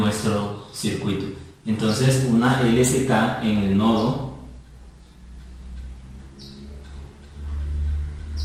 circuito. Entonces, una LSK en el nodo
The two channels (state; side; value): identical; both; correlation 1.00